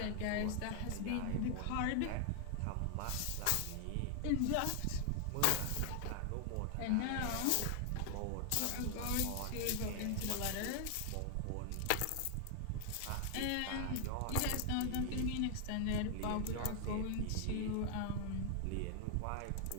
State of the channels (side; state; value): both; different; correlation 0.00